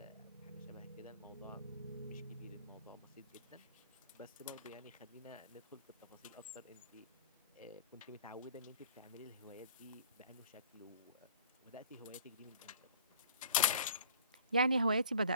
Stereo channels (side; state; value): both; inverted; correlation -0.50